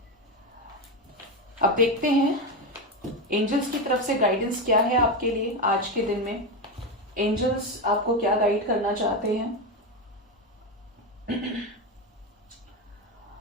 अब देखते हैं एंजल्स की तरफ से गाइडेंस क्या है आपके लिए आज के दिन में। एंजल्स आपको क्या गाइड करना चाहते हैं।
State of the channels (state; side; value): normal; both; correlation 0.13